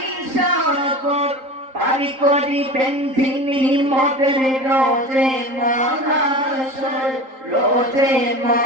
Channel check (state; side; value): late; left; 3.8 ms